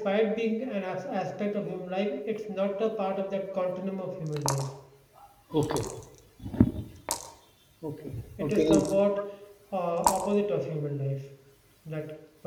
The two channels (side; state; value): both; identical; correlation 1.00